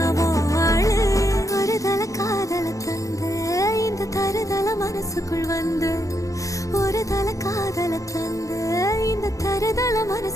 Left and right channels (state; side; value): late; right; 0.16 ms